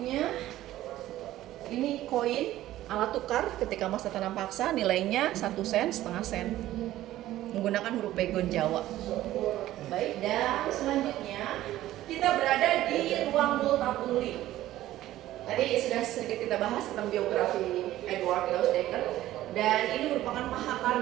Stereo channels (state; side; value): quieter; left; 14.6 dB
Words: ini koin, alat tukar ketika masa tanam paksa, nilainya 1 sen, setengah sen. menggunakan huruf pegon Jawa. Baik, dan selanjutnya kita berada di ruang Multatuli. Tadi sudah sedikit kita bahas tentang biografi Edward Dousdekker, dan ini merupakan